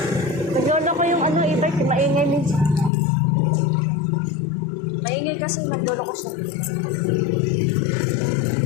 Naglolo ko yung ano, e-bike, maingay minsan. Maingay kasi naglolo ko sa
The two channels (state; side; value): drops out; right; at 2.9 s